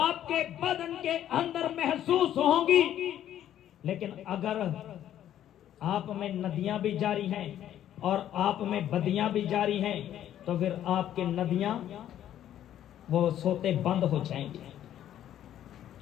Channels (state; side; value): quieter; right; 11.3 dB